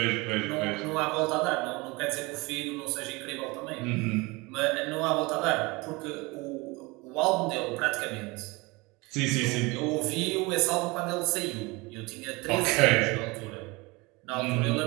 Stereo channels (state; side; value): quieter; left; 24.6 dB